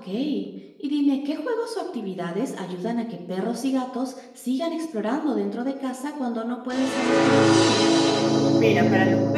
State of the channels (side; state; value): both; identical; correlation 1.00